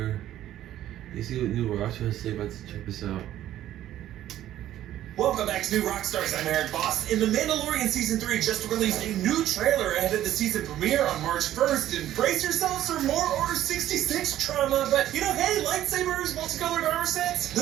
You see what New Rockstar has to say about this? Check this out. Welcome back to New Rockstars. I'm Eric Boss. In The Mandalorian Season 3 just released a new trailer ahead of the season premiere on March 1st. And brace yourselves for more Order 66 trauma. But, you know, hey, lightsabers, multicolored armor sets, the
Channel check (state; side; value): quieter; left; 12.7 dB